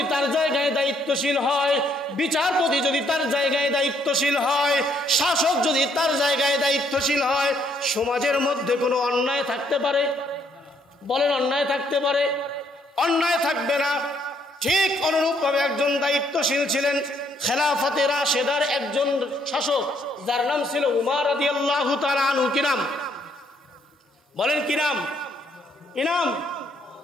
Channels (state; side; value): normal; both; correlation 0.69